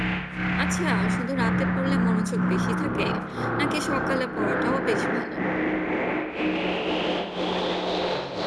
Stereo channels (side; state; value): both; identical; correlation 1.00